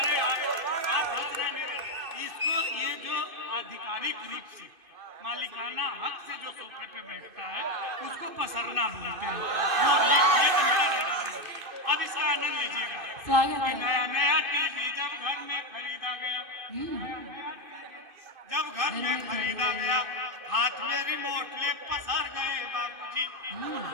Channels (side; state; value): left; late; 2.6 ms